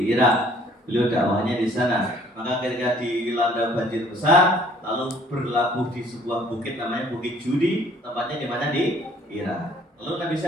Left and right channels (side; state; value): both; normal; correlation 0.58